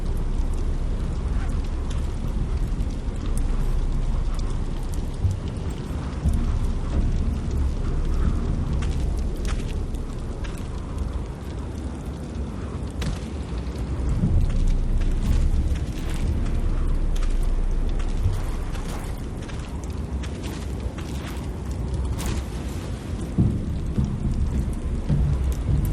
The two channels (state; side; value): identical; both; correlation 1.00